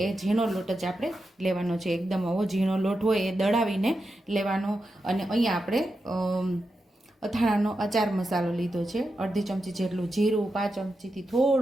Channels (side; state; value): both; normal; correlation 0.88